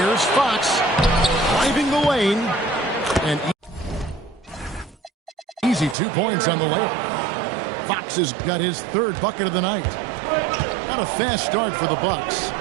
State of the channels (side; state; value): left; drops out; at 6.0 s